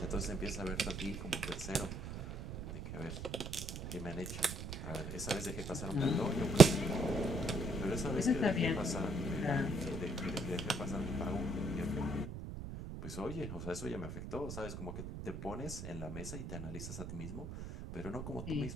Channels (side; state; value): right; noise; rumble, 8 dB below the sound